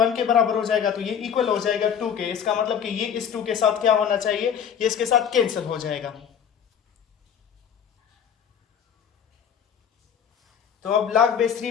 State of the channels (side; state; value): right; quieter; 8.1 dB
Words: के बराबर हो जाएगा तो ये इक्वल हो जाएगा 2 के। इसका मतलब कि ये इस 2 के साथ क्या होना चाहिए, ये इसके साथ कैंसिल हो जाएगा। तो अब log base